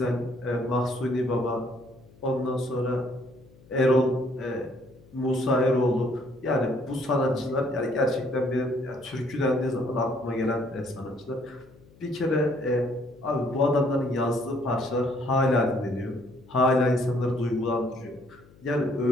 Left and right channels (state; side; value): noise; left; hum, 26 dB below the sound